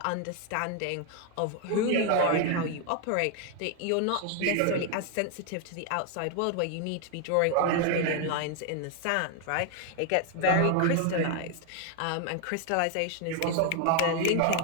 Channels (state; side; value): different; both; correlation 0.01